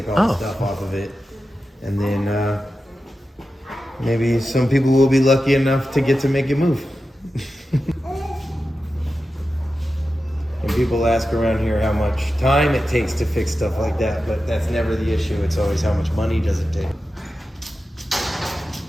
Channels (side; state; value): both; normal; correlation 0.92